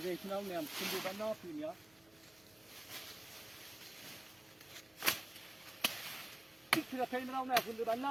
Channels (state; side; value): noise; right; hum, 30 dB below the sound